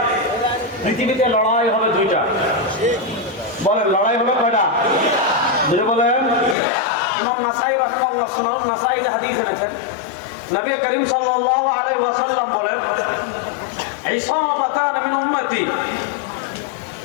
পৃথিবীতে লড়াই হবে দুইটা। বলেন লড়াই হবে কয়টা? দুটো বলেন। ইমাম নাসাই রাহমাহুল্লাহ সুনান নাসাইতে হাদিস এনেছেন, নবী করিম সাল্লাল্লাহু আলাইহি ওয়াসাল্লাম বলেন, ইসাবাতান মিন উম্মতি,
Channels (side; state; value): right; drops out; at 6.6 s